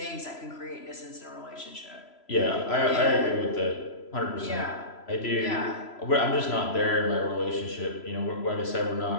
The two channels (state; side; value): late; right; 3.0 ms